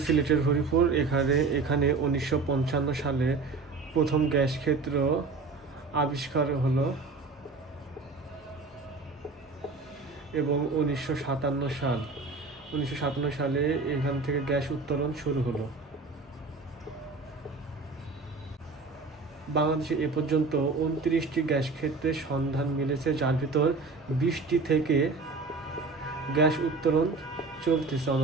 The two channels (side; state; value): left; quieter; 4.1 dB